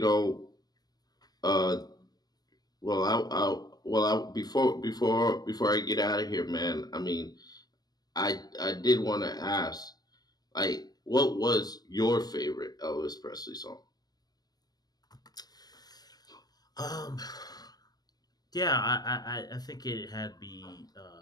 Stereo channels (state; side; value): late; right; 0.19 ms